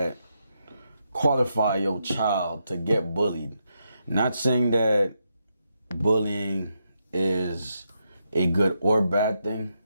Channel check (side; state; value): both; inverted; correlation -0.82